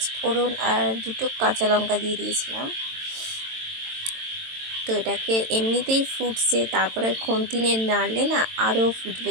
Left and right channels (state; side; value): late; left; 22 ms